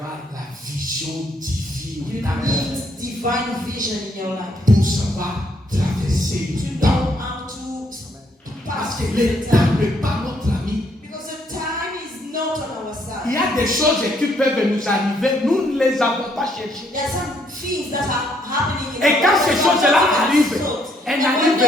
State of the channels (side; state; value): both; normal; correlation 0.70